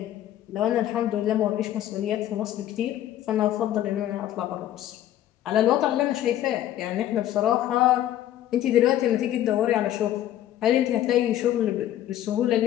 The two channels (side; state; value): right; quieter; 12.3 dB